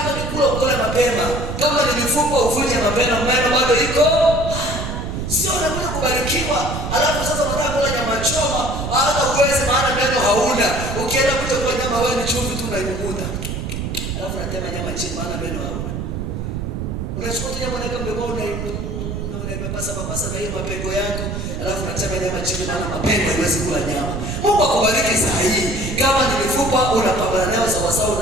ni kula ukole mapema, kama ni mifupa uvunje mapema, bado iko. Sio unakuja kubarikiwa, alafu sasa unataka kula nyama choma, hata uweze maana meno hauna. Ukienda kuja kula nyama wewe ni chumvi tu unaimumuda. Alafu unatema nyama chini maana meno hauna. Unachukua nyama unaweka mdomoni unapapasa na hiyo mapengo yako, alafu unatema nyama chini maana mapengo haiwezi kula nyama. Mungu akubariki saa hii. Kama ni mifupa unapambana nayo sawa sawa,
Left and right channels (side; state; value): right; noise; rumble, 4 dB below the sound